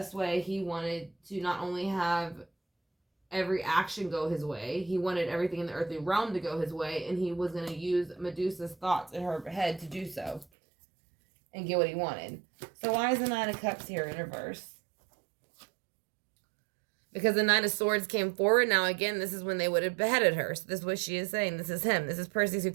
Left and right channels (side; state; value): left; drops out; at 10.5 s